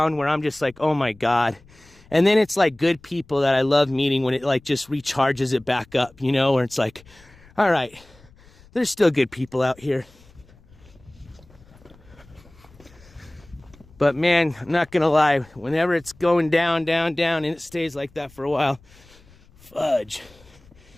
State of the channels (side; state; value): left; noise; rumble, 27 dB below the sound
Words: where I'm just like, oh my God. And then it's like good people that I love meeting when it like just recharges it back up, you know, where it's like, all right, there's still good people out here. But man, I'm not gonna lie, whenever it's going down, and it stays like that for a while, fudge.